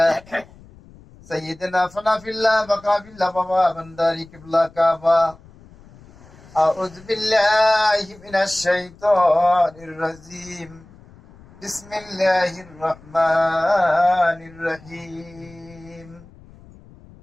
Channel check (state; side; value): noise; left; rumble, 23 dB below the sound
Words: সাইয়্যিদিনা ফানাফিল্লাহ বাকাবিল্লাহ বাবা বান্দারি কিবলা কাবা আউযু বিল্লাহি মিনাশ শাইতানির রাজিম বিসমিল্লাহির রহমানির রহিম